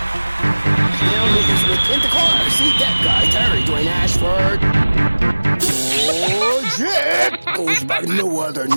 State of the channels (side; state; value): both; inverted; correlation -1.00